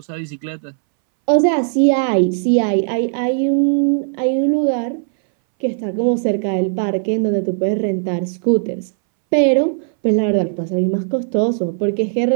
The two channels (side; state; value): left; silent; 64 dB below the other